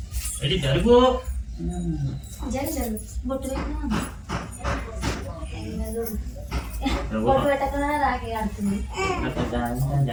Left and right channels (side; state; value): both; identical; correlation 1.00